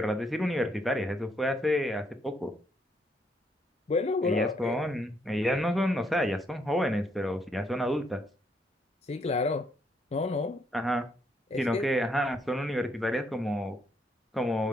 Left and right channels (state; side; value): normal; both; correlation 0.73